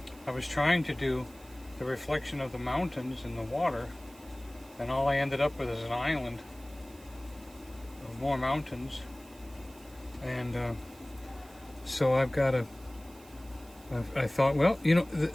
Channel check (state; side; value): noise; right; hiss, 24 dB below the sound